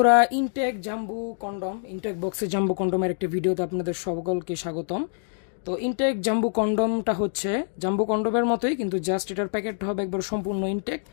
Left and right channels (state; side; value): silent; right; digital silence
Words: intact জাম্বু condom, intact বক্সের জাম্বু কন্ডমের একটি ভিডিওতে আপনাদের সকলকে স্বাগতম। তো ইনটেক জাম্বু কন্ডমটা হচ্ছে জাম্বু কন্ডমের মতোই, কিন্তু জাস্ট এটার প্যাকেটটা হবে একবার সম্পূর্ণ ইনটেক